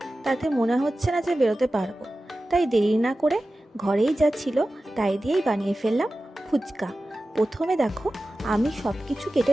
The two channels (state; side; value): normal; both; correlation 0.95